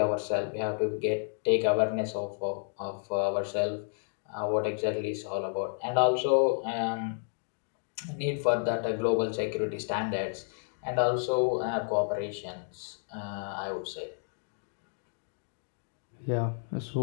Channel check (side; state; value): right; silent; digital silence